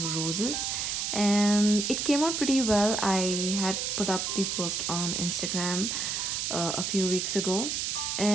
roses, and it came out pretty well. I had put up the post on Instagram a few weeks ago,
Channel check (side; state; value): right; noise; hiss, 1 dB below the sound